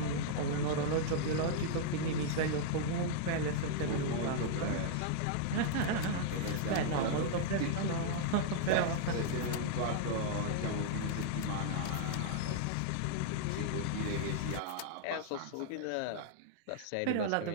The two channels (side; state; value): both; different; correlation -0.01